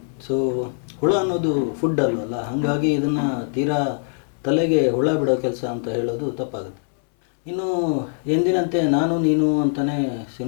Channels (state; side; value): silent; right; 64 dB below the other